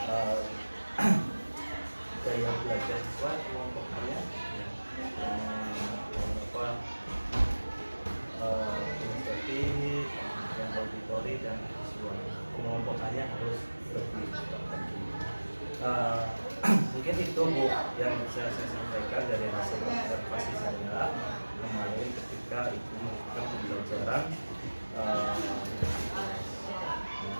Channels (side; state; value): both; inverted; correlation -1.00